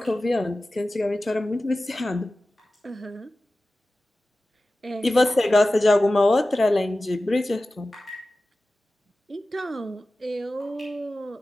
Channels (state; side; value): normal; both; correlation 0.95